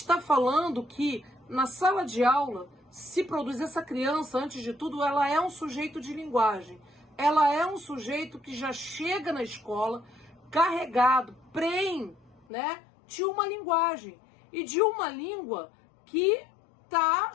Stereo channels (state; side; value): drops out; right; at 12.5 s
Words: falando que na sala de aula se produz essa criança, antes de tudo, ela é um sujeito de linguagem. Ela é um sujeito que já chega na escola carregado, né, de uma linguagem. E de uma língua que está